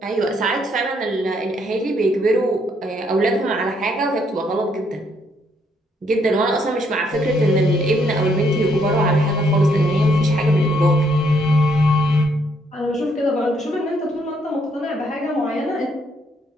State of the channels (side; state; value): both; normal; correlation 0.71